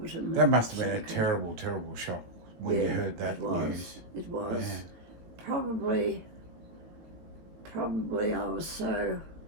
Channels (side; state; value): left; late; 18 ms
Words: That must have been a terrible, terrible shock when you heard that it was. news. It was. Yeah. Probably I was so